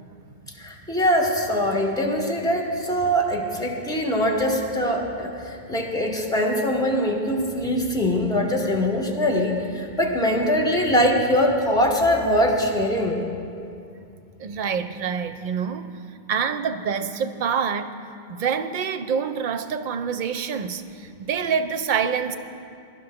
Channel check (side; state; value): left; late; 2.2 ms